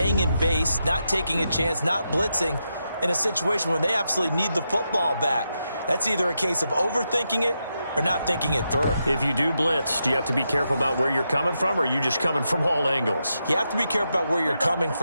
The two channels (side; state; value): both; inverted; correlation -0.85